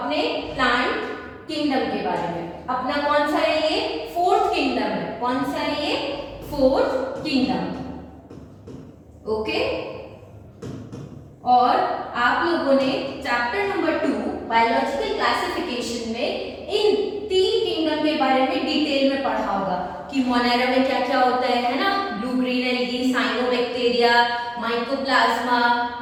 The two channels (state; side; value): identical; both; correlation 1.00